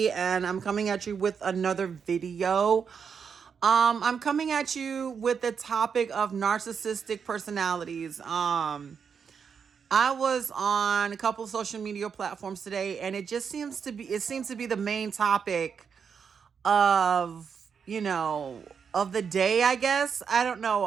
and I'm coming at you with another video. I'm coming at you with the topic of narcissistic personalities. I was on a couple of social media platforms today, and it seems to be the main topic of, of the day, I guess. I don't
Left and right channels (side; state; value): left; quieter; 6.6 dB